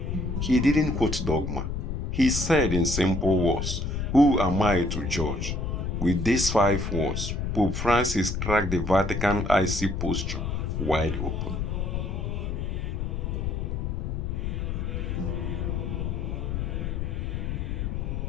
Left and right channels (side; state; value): left; noise; rumble, 2 dB below the sound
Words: he didn't quote dogma. He said in simple words, "Who am I to judge?" With these 5 words, Pope Francis cracked the Vatican icy posture wide open.